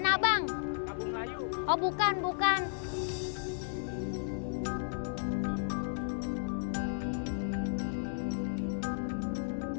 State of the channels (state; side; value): silent; right; digital silence